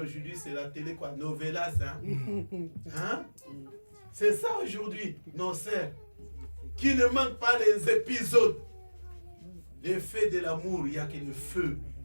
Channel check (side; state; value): both; inverted; correlation -1.00